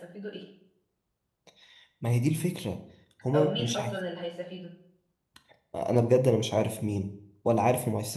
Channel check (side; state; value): both; identical; correlation 1.00